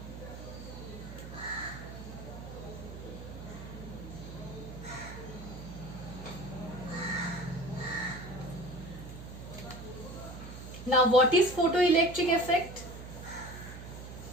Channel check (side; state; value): right; noise; hum, 11 dB below the sound